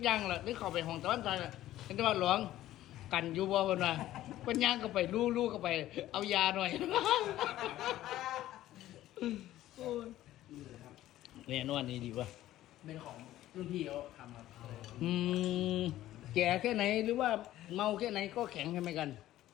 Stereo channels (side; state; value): right; quieter; 14.2 dB